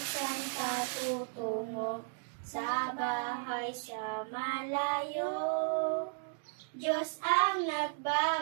patutungo, sa bahay sa malayo, Diyos ang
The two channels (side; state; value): left; silent; digital silence